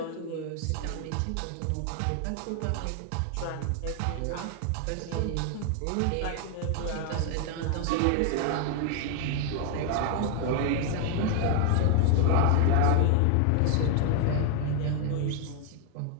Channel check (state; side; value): different; both; correlation 0.00